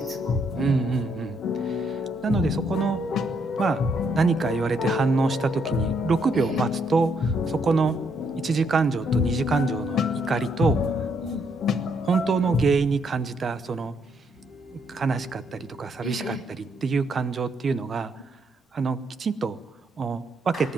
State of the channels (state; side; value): normal; both; correlation 0.73